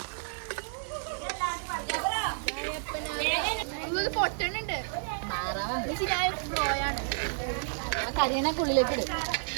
പൊട്ടണുണ്ട്. കരിയണക്കുള്ളിലേക്ക് ഇടും.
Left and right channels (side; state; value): left; silent; digital silence